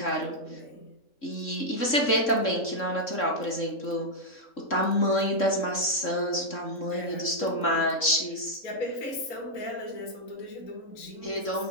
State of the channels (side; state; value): right; late; 3.7 ms